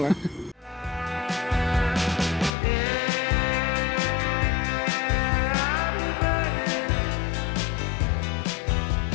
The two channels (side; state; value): right; drops out; at 2.5 s